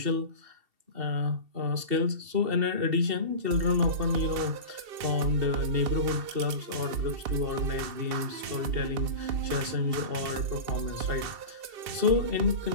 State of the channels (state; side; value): late; left; 2.7 ms